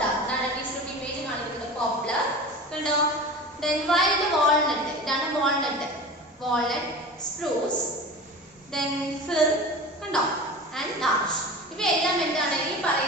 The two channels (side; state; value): both; normal; correlation 0.34